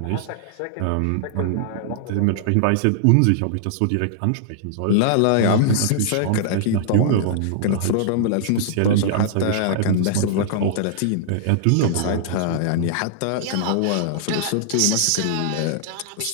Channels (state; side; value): different; both; correlation -0.01